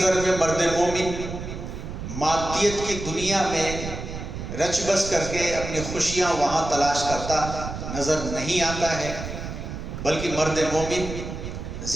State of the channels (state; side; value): noise; right; rumble, 8 dB below the sound